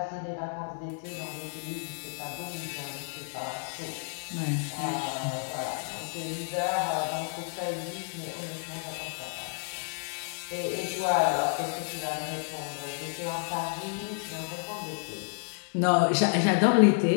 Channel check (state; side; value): silent; right; 57 dB below the other